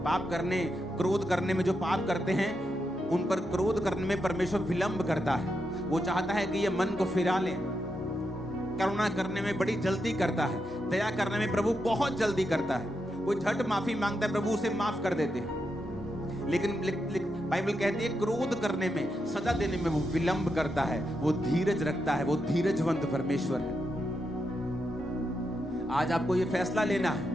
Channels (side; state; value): both; normal; correlation 0.85